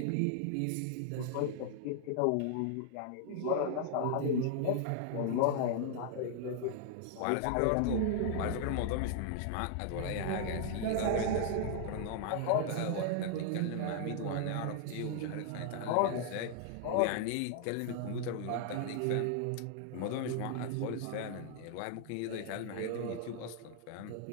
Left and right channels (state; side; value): different; both; correlation 0.00